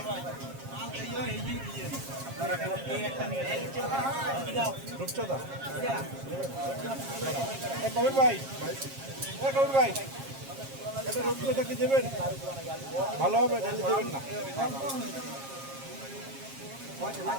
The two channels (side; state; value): left; late; 7.4 ms